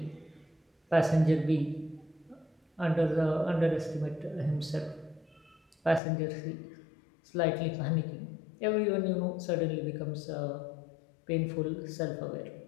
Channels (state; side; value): drops out; right; at 6.0 s